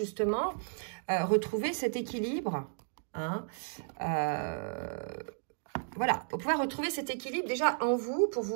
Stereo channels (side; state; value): left; silent; digital silence